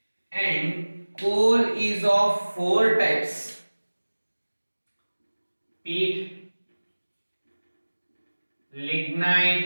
And coal is of four types: peat,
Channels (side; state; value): both; inverted; correlation -1.00